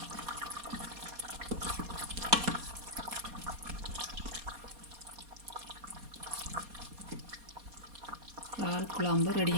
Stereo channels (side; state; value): left; late; 4.2 ms